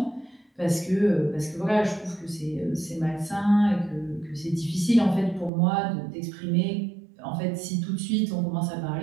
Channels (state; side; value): drops out; left; at 5.5 s